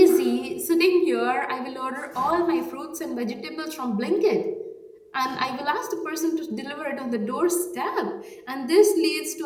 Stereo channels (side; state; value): both; identical; correlation 1.00